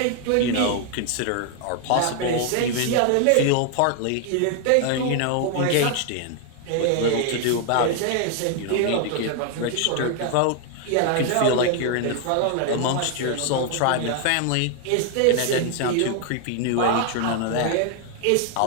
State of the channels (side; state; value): both; different; correlation 0.00